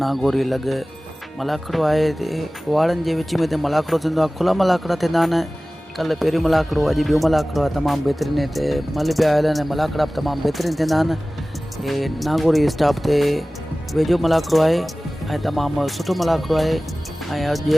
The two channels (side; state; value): both; normal; correlation 0.97